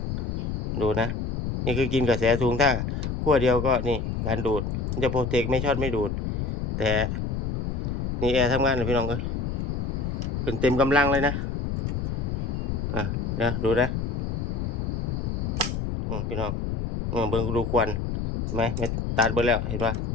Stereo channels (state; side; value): noise; left; rumble, 2 dB below the sound